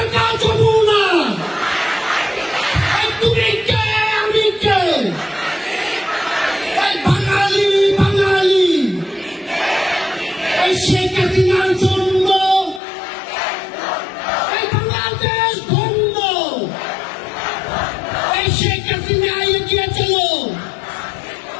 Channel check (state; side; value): drops out; right; at 12.8 s